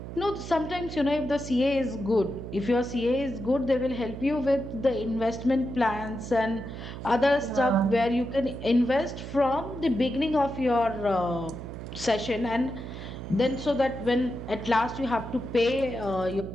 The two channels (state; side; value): noise; right; hum, 10 dB below the sound